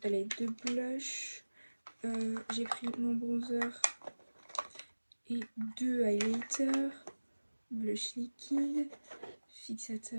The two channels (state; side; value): inverted; both; correlation -1.00